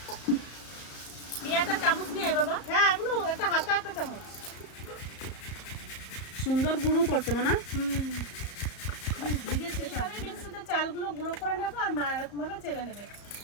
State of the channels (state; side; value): late; right; 34 ms